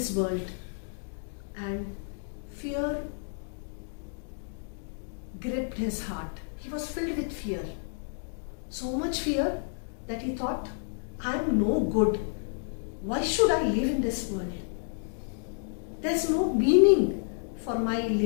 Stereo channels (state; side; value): silent; right; digital silence